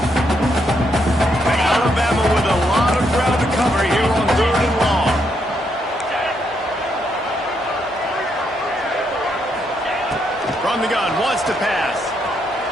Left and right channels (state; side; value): normal; both; correlation 0.77